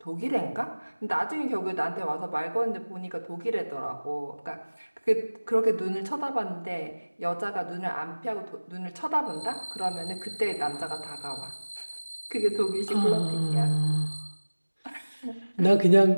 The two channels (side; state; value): both; inverted; correlation -1.00